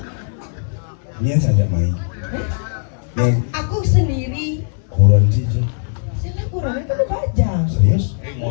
Ini saja main. Yang Aku sendiri. kurang sih. Saya kurang itu baju.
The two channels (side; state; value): right; silent; 67 dB below the other